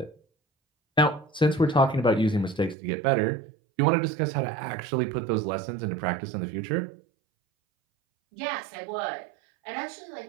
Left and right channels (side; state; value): left; drops out; at 2.8 s